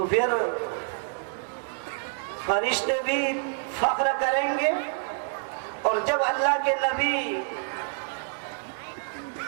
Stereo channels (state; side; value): silent; left; 60 dB below the other